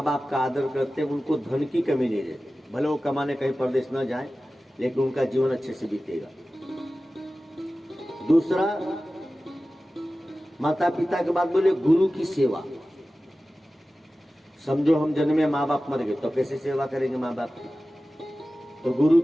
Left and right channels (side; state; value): both; normal; correlation 0.95